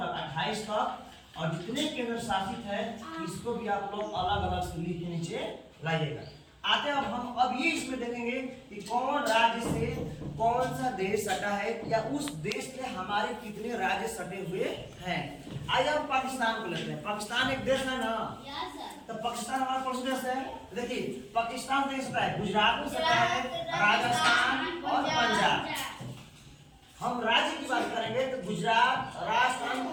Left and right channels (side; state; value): both; identical; correlation 1.00